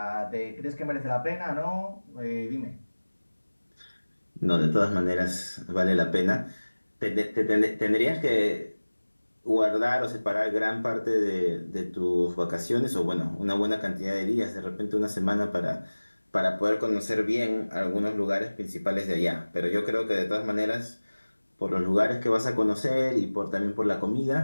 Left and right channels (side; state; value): both; inverted; correlation -1.00